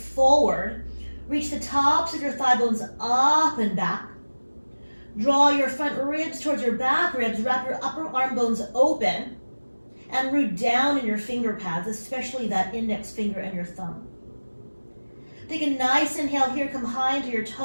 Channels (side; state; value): both; inverted; correlation -1.00